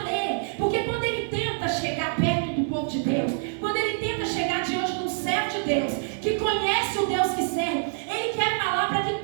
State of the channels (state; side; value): silent; left; digital silence